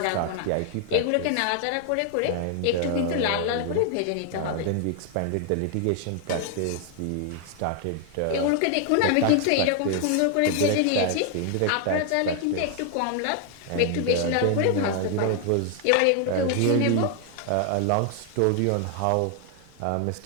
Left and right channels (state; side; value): different; both; correlation 0.00